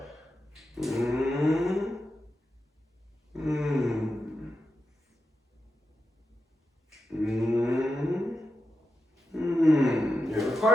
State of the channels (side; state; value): both; normal; correlation 0.89